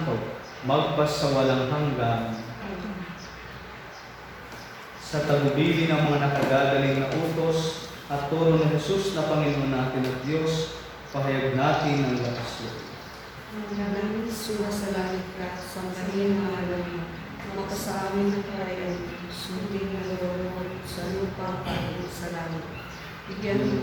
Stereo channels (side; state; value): both; identical; correlation 1.00